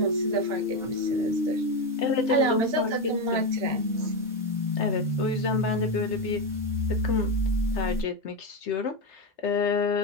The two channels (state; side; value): normal; both; correlation 0.12